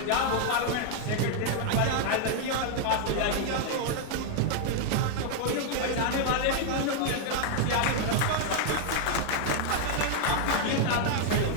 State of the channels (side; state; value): both; different; correlation 0.00